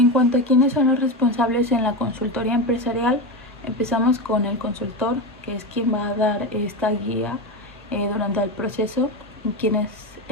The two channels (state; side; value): normal; both; correlation 0.18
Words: cuanto a quiénes son los responsables en la consultoría empresarial, empezamos con el consultor, que es quien va a dar esta guía durante el proceso, quien es